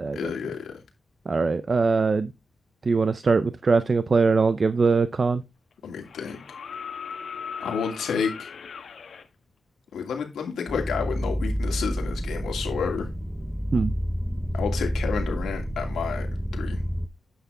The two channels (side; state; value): both; normal; correlation 0.89